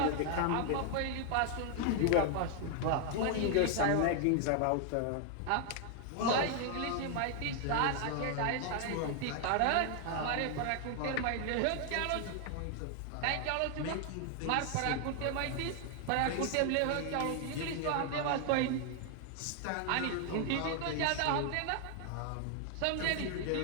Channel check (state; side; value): different; both; correlation 0.00